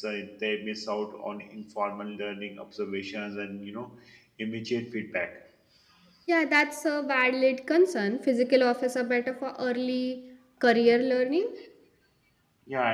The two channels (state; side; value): identical; both; correlation 1.00